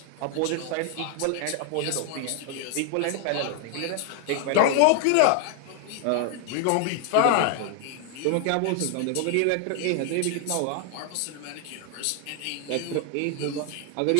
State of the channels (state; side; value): different; both; correlation 0.00